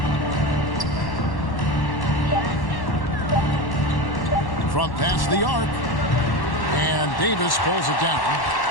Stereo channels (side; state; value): right; late; 1.1 ms